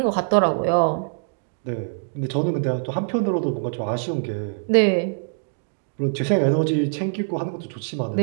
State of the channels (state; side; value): silent; left; digital silence